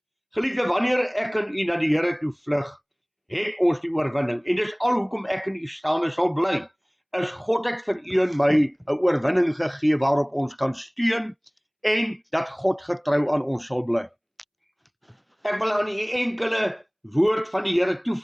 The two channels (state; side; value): identical; both; correlation 1.00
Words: Geliefde, wanneer ek en u na die Here toe vlug, het ons die oorwinning. En dis al hoekom ek en u staande sal bly, is God het vir u en my 'n oorwinning gegee waarop ons kan steun, en dat God getrou aan ons sal bly. Ek wil aan u enkele woord van die Here